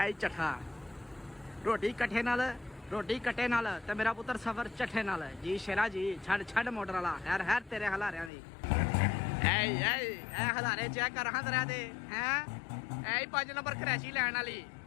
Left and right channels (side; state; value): right; drops out; at 8.3 s